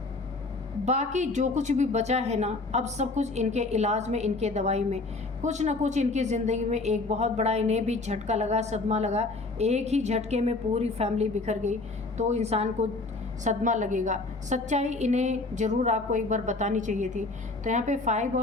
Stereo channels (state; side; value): quieter; right; 3.4 dB